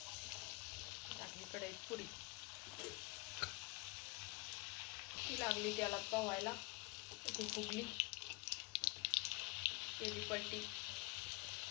टाकली कढईत पुरी. ती लागली त्याला पोहायला. ती फुगली, केली पलटी.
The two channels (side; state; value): right; quieter; 27.1 dB